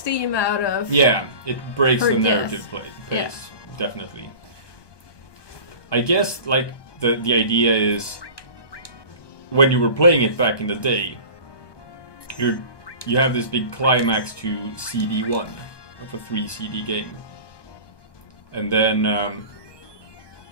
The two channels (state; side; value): late; right; 1.2 ms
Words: out of... Yeah, it breaks the death. narrative pace, definitely. I guess, the idea is, when you were playing it back in the day, you have this big climax to CD1 of a 3 CD game. And then,